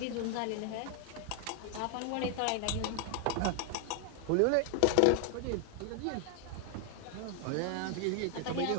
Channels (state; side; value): different; both; correlation 0.00